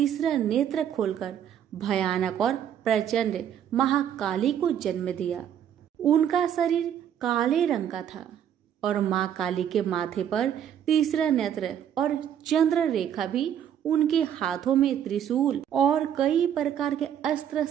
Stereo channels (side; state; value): left; quieter; 9.5 dB